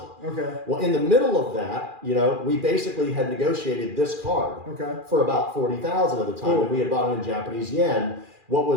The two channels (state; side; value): late; left; 2.4 ms